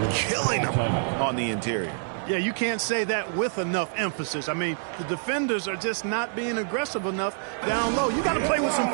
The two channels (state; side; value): silent; left; digital silence